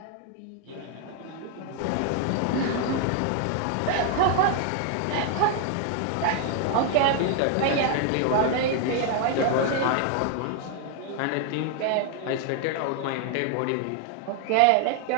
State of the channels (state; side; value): different; both; correlation 0.00